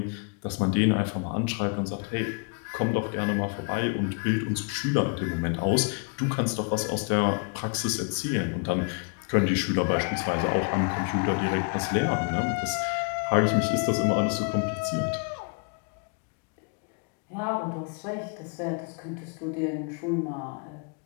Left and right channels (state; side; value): quieter; right; 37.2 dB